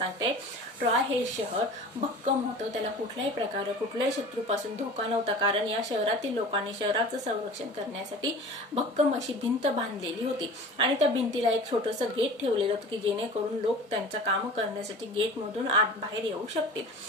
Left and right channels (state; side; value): normal; both; correlation 0.39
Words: ट्रॉय हे शहर भक्कम होतं. त्याला कुठल्याही प्रकारे कुठल्याही शत्रूपासून धोका नव्हता, कारण या शहरातील लोकांनी शहराचं संरक्षण करण्यासाठी भक्कम अशी भिंत बांधलेली होती. आणि त्या भिंतीला एक छोटंसं गेट ठेवलेलं होतं की जेणेकरून लोक त्यांचं काम करण्यासाठी गेटमधून आत बाहेर येऊ शकतील.